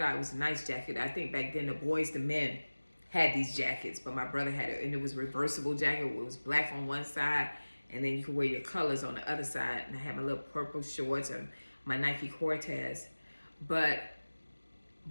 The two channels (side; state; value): both; inverted; correlation -1.00